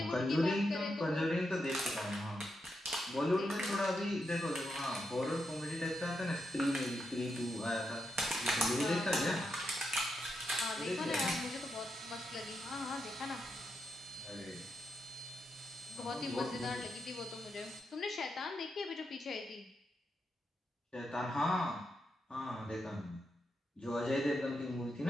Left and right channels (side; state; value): both; normal; correlation 0.84